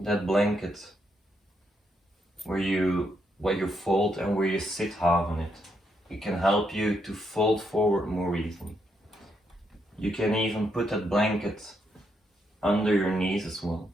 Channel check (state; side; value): normal; both; correlation 0.78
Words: that blanket where you fold and where you sit half on it. It can help you to fold forward more easily. You can even put that blanket under your knees as well.